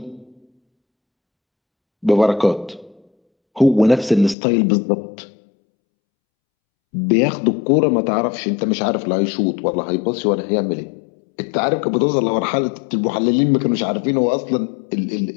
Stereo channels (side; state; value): right; drops out; at 4.4 s